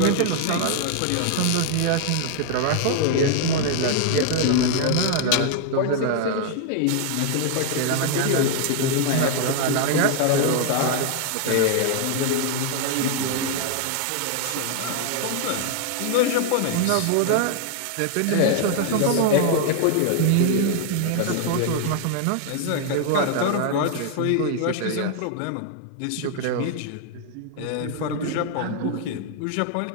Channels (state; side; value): different; both; correlation 0.00